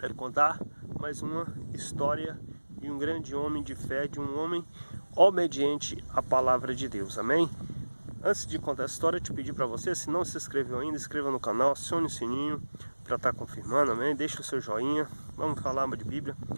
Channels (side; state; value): both; inverted; correlation -1.00